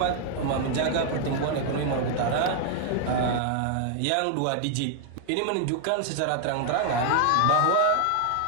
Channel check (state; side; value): different; both; correlation 0.00